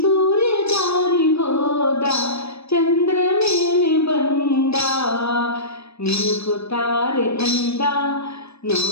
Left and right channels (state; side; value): late; right; 0.78 ms